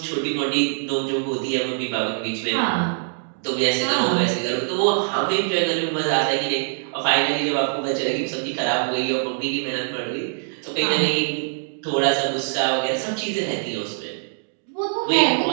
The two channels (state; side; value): silent; left; digital silence